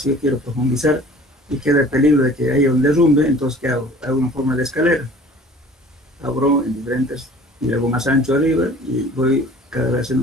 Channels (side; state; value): both; normal; correlation 0.47